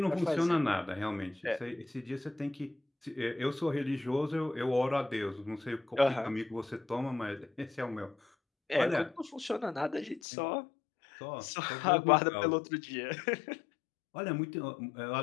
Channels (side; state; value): right; drops out; at 10.2 s